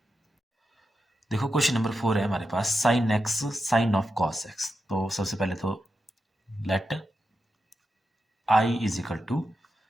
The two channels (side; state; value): both; normal; correlation 0.88